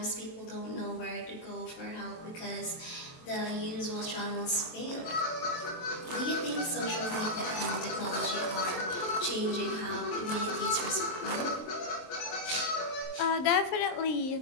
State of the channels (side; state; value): right; late; 23 ms